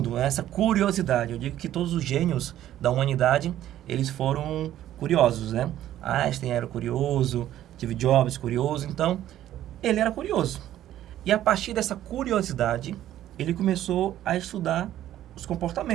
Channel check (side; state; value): left; quieter; 12.6 dB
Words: essa curiosidade. Eu digo que todos os gênios da humanidade, eles foram curiosos, né? Einstein era curioso, Steve Jobs curioso, então ele era curioso. E a partir dessa curiosidade, ele começou a estudar os